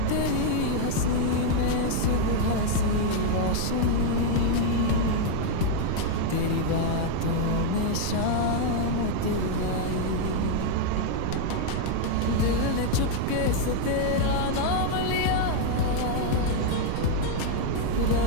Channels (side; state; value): both; different; correlation 0.00